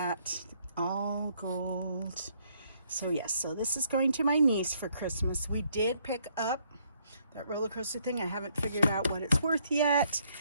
all gold. So yes, so this is going to my niece for Christmas. We did pick up that roller coaster thing. I haven't figured out what it's worth yet,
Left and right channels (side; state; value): both; inverted; correlation -0.69